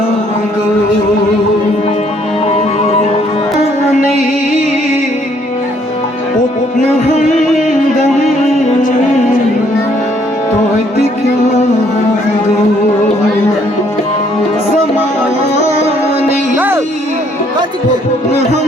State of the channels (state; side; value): normal; both; correlation 0.66